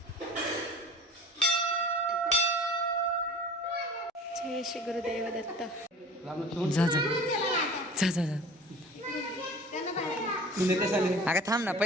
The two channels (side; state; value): both; normal; correlation 0.42